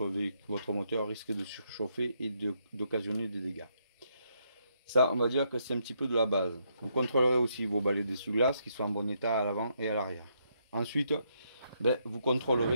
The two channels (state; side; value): inverted; both; correlation -0.76